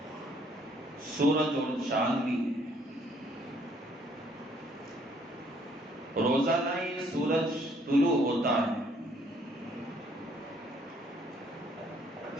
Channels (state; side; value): normal; both; correlation 0.64